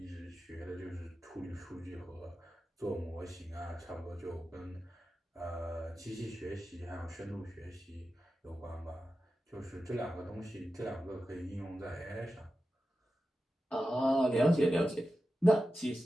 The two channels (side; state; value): both; normal; correlation 0.92